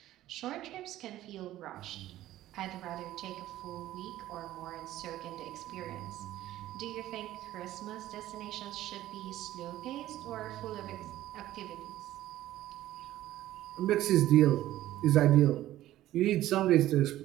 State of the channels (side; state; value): left; quieter; 14.3 dB